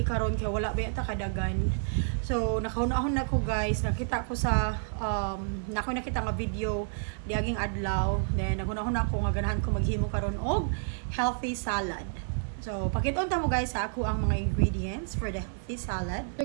karon kay wala ba ta kadagan. So nakahunahon na ko guys, nakita ko sa nakita nga video diaging adlaw. Then naghunahon ako nga ganahan ko maghimo karon og healthy salad. So pakiton ta mo guys sa ako ang mga ingredients for the healthy salad. So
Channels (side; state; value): left; silent; digital silence